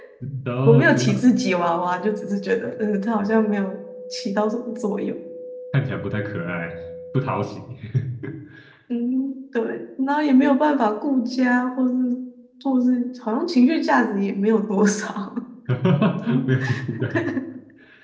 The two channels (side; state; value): both; identical; correlation 1.00